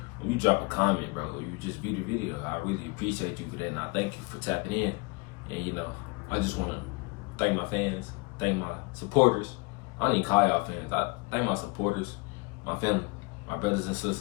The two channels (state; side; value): quieter; right; 27.7 dB